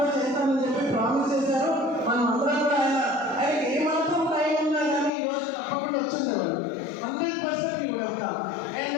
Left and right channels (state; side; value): drops out; right; at 5.1 s